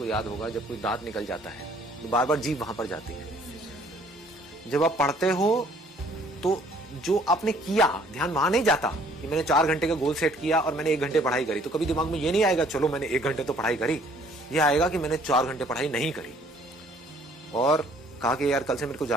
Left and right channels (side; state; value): both; normal; correlation 0.59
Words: याद होगा, जब कोई दांत निकल जाता है तो बार बार जीभ वहां पर जाती है। जब आप पढ़ते हो तो जो आपने किया ध्यान वहां नहीं जाता कि मैंने 4 घंटे का गोल सेट किया और मैंने 1 घंटे पढ़ाई करी। तो कभी दिमाग में ये नहीं आएगा चलो मैंने 1 घंटे तो पढ़ाई करी, ये आएगा कि मैंने 4 घंटे पढ़ाई नहीं करी, और कहा कि यार कल से मेरे को